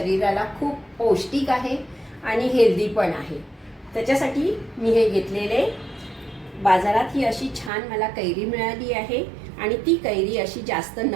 खूप पौष्टिक आहे आणि हेल्दी पण आहे। त्याच्यासाठी मी हे घेतलेले बाजारात ही अशी छान मला कैरी मिळाली आहे आणि ती कैरी अशी जास्त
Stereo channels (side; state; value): left; drops out; at 7.7 s